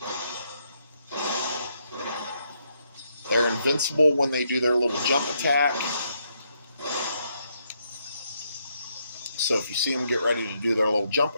They're invincible when they do their little jump attack. So if you see them get ready to do their little jump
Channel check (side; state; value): both; inverted; correlation -0.76